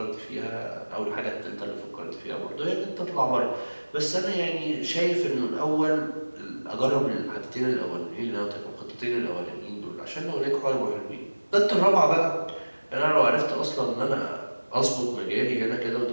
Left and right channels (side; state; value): both; inverted; correlation -1.00